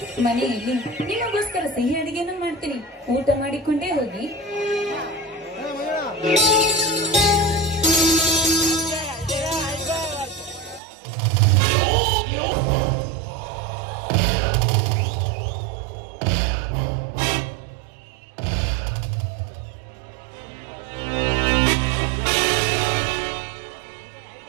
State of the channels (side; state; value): left; drops out; at 10.8 s